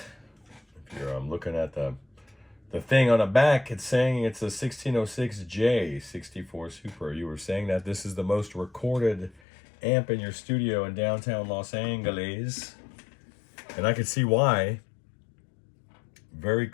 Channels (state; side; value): drops out; right; at 9.4 s